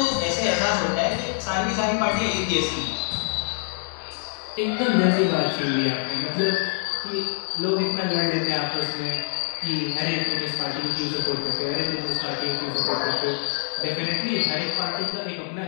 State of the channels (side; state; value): right; silent; digital silence